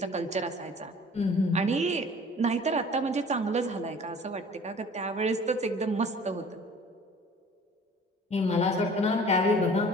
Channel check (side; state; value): both; normal; correlation 0.48